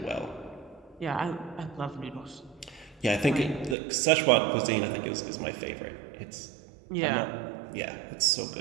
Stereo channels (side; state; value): left; drops out; at 3.8 s